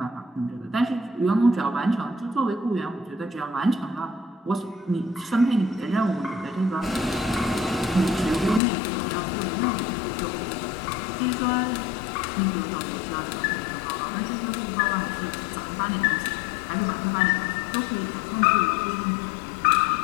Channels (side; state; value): right; drops out; at 8.6 s